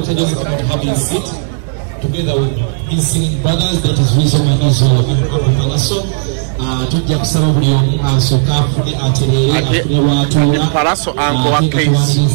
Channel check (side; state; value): left; silent; digital silence